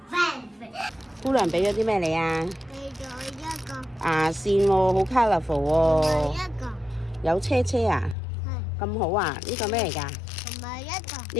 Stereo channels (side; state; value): right; drops out; at 8.2 s